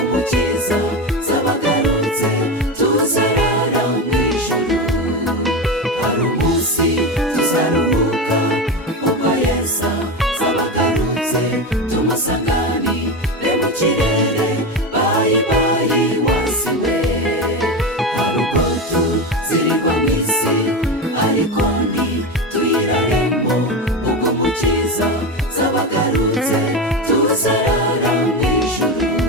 umukiza zabagarutse tuzarara mu ijuru. hari umunsi tuzaruhuka ubwo Yesu zabagarutse tumusanganire mu kirere, bayi bayi wasiwe. hari ubwo tuzirirwa mu isi ariko ntituyiraremo, ubwo umukiza zabagarutse tuzarara mu ijuru.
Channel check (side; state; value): both; normal; correlation 0.19